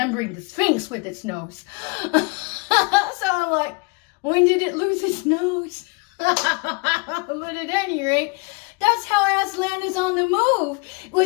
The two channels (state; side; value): quieter; right; 29.9 dB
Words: the Sphinx with its nose. So I'm like, when did it lose its nose? But at any rate, that's how Aslan is on the move